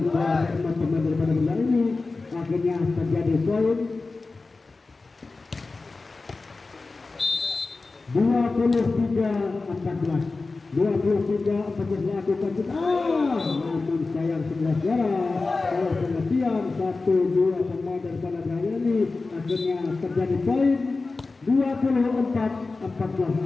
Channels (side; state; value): right; quieter; 3.7 dB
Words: teman-teman daripada bola ini akhirnya terjadi poin 23-14 lakukan namun sayang 11 kalau pengertian 1-2 pemain daripada Raya ini akhirnya terjadi poin